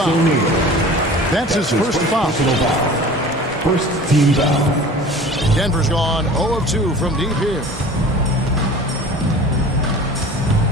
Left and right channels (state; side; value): normal; both; correlation 0.42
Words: That's his first foul. First team foul. Denver's gone 0 of 2 from deep here.